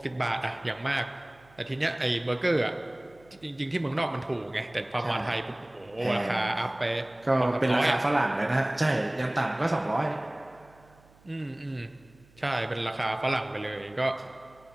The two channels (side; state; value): right; noise; hum, 28 dB below the sound